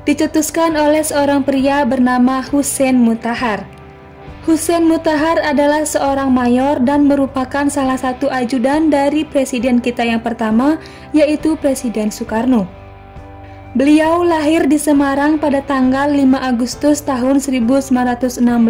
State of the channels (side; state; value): both; identical; correlation 1.00